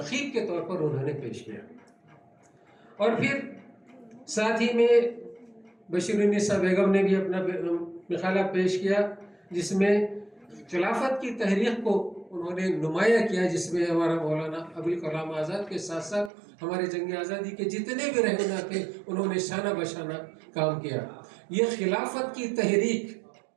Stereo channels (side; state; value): left; drops out; at 16.3 s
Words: کے طور پر انہوں نے پیش کیا۔ اور پھر ساتھ ہی میں بشیر النساء بیگم نے بھی اپنا مقالہ پیش کیا، جس میں خلافت کی تحریک کو انہوں نے نمایاں کیا، جس میں ہمارا مولانا ابوالکلام آزاد کے ساتھ ساتھ ہمارے جنگ آزادی کے جتنے بھی رہنما تھے انہوں نے شانہ بشانہ کام کیا۔ یہ خلافت کی تحریک